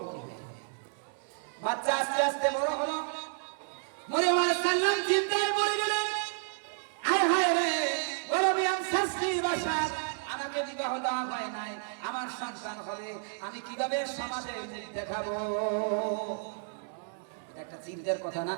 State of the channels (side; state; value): left; silent; digital silence